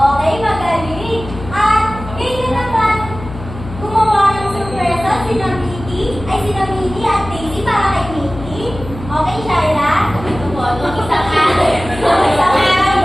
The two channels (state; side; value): noise; left; hum, 12 dB below the sound